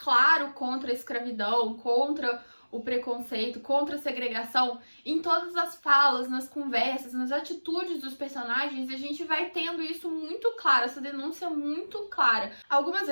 contra a escravidão, contra o preconceito, contra a segregação, em todas as falas, nas conversas, nas atitudes dos personagens, a gente vai tendo isso muito claro, essa denúncia muito clara. Algumas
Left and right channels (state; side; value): inverted; both; correlation -1.00